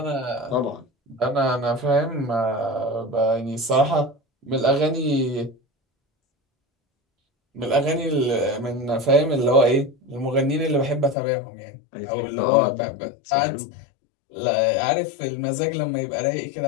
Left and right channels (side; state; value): right; drops out; at 11.2 s